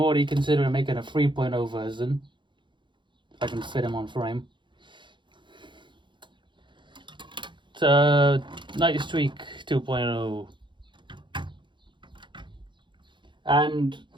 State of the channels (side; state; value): left; late; 0.23 ms